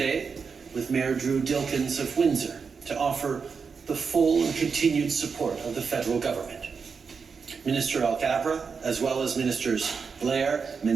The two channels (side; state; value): left; quieter; 5.5 dB